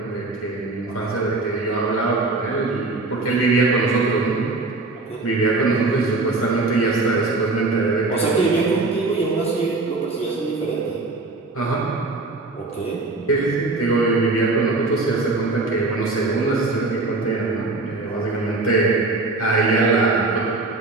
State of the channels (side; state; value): left; quieter; 3.3 dB